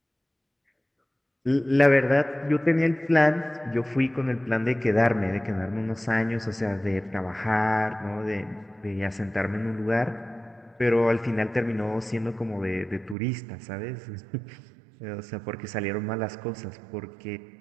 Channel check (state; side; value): drops out; left; at 13.2 s